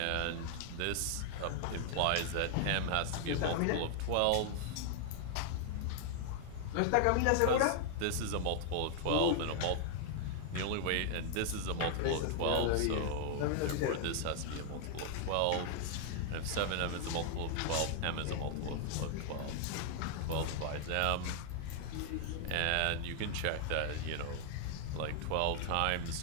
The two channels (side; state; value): both; different; correlation 0.00